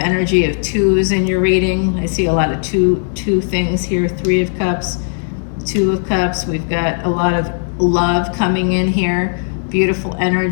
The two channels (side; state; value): right; silent; digital silence